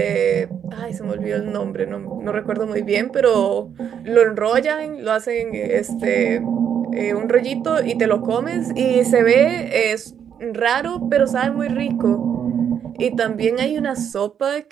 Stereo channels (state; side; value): quieter; left; 8.4 dB